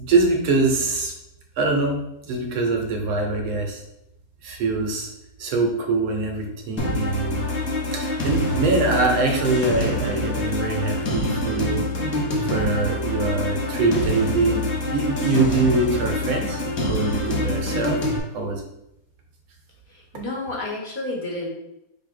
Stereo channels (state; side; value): late; left; 4.3 ms